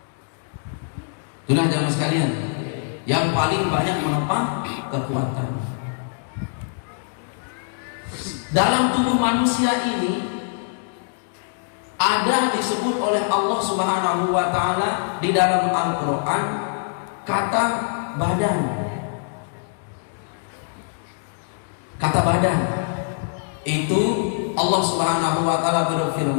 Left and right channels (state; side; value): silent; right; digital silence